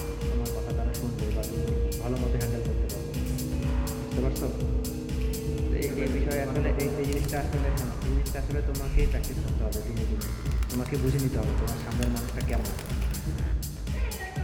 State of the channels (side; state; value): both; identical; correlation 1.00